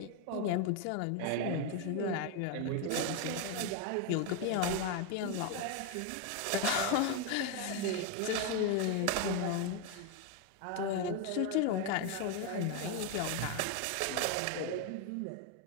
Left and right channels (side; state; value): both; different; correlation 0.01